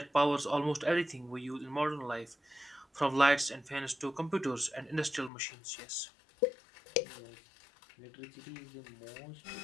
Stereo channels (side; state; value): right; drops out; at 5.3 s